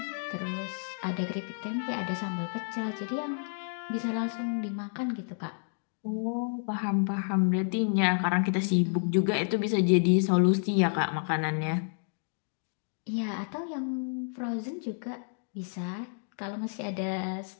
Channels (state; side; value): silent; right; 58 dB below the other